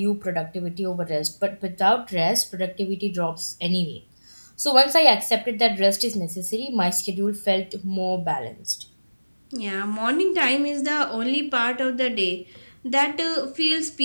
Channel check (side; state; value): both; inverted; correlation -1.00